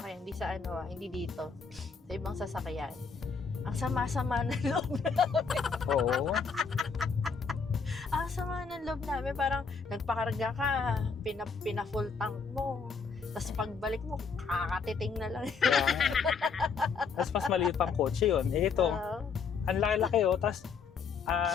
hindi dito. Sa ibang sasakyan. Ang sama-sama ng loob namin. Oo. Ang sama ng loob namin. Parang nagpakarga ka, pina-full tank mo. Tapos pagbalik mo, kakatiting na lang. Tapos mas maliit pang kotse yun. Eh ito, ang laki-laki Tapos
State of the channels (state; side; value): quieter; right; 5.4 dB